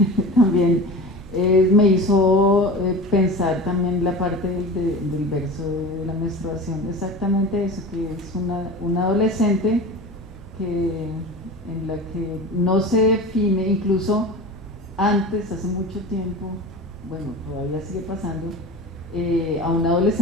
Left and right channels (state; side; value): normal; both; correlation 0.33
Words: también me hizo pensar también la parte del verso de la menstruación, exactamente eso, que es una adolescente en la que no se define, incluso antes, hace mucho tiempo, bueno, todavía sigue pasando, a un